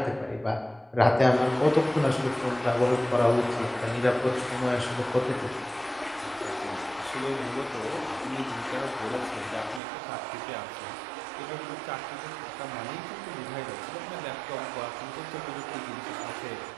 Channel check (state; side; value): drops out; left; at 9.8 s